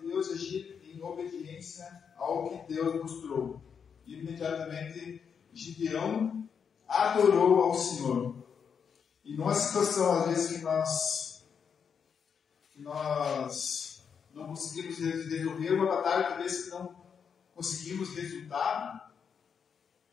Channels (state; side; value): quieter; right; 6.8 dB